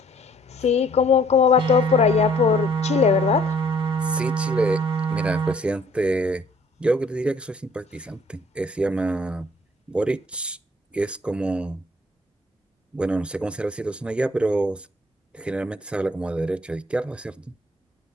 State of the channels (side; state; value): both; normal; correlation 0.60